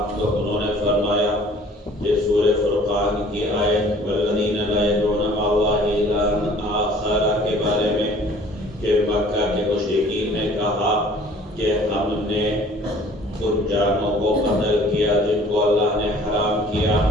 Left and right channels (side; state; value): both; normal; correlation 0.52